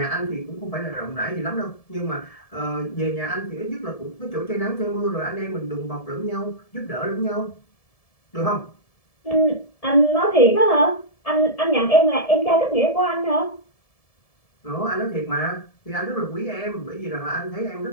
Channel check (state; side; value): late; right; 1.7 ms